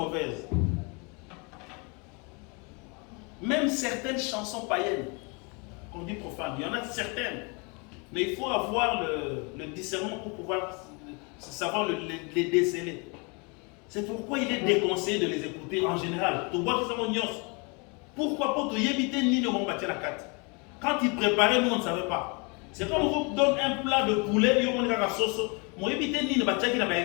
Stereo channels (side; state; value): right; quieter; 31.8 dB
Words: Même certaines chansons païennes, qu'on dit profanes, il y en a certaines. Mais il faut avoir le discernement pour pouvoir savoir les déceler. C'est pourquoi il est déconseillé de les écouter en général. Pourquoi pas te éviter ni de m'embattre la carte. Quand ils préparaient, nous on ne savait pas. C'est comme on vous donne un plat de poulet, il y a la sauce. Moi éviter ni de battre qui n'a pas